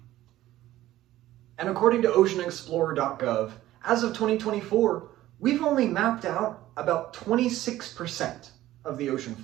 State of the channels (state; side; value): quieter; left; 14.8 dB